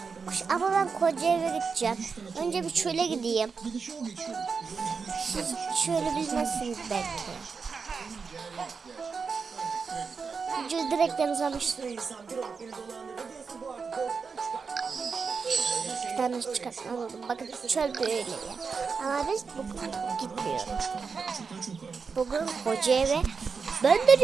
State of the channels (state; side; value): quieter; left; 5.3 dB